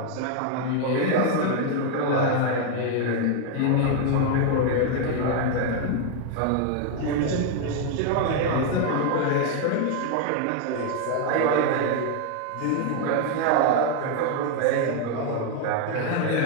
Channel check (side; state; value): both; different; correlation 0.01